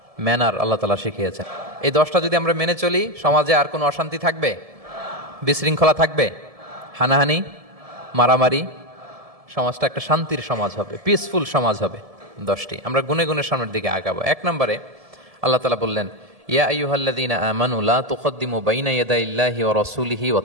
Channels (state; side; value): late; left; 1.7 ms